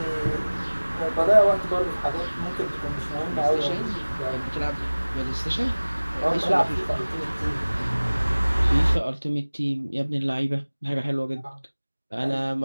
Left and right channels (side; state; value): both; inverted; correlation -1.00